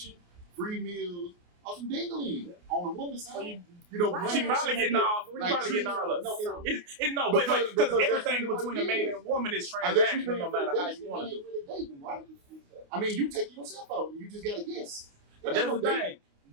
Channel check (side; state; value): left; late; 28 ms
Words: free meals, or some dingling on the woman's side. She probably getting all. Because everything between a man and a woman is transactional, no matter how you want to do it. I mean, you take yourself out, you just gotta guess. But that's the thing.